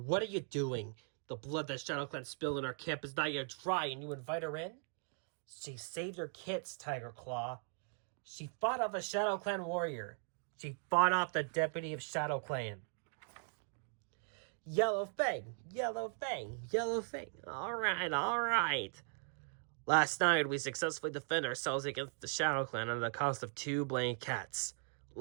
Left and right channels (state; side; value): silent; left; 52 dB below the other